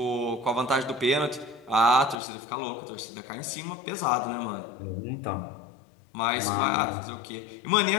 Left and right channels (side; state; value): right; drops out; at 2.1 s